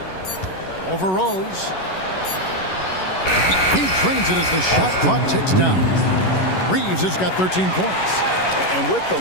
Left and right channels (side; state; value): right; late; 11 ms